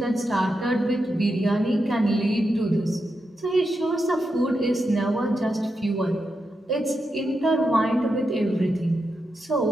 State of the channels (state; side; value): normal; both; correlation 0.86